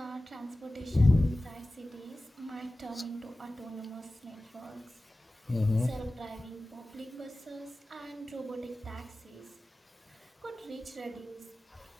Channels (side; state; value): both; normal; correlation 0.96